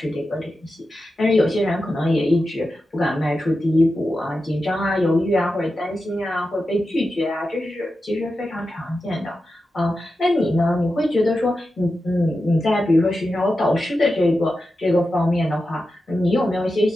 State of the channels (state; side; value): normal; both; correlation 0.91